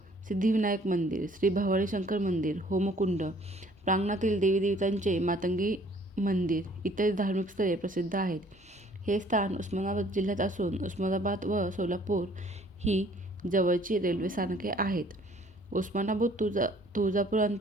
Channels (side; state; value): both; normal; correlation 0.57